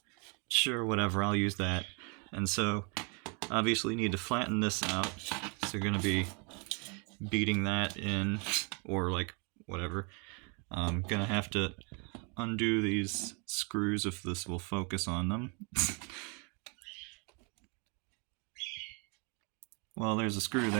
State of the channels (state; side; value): quieter; left; 34.0 dB